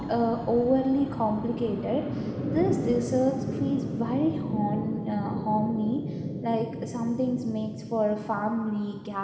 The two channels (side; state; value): both; identical; correlation 1.00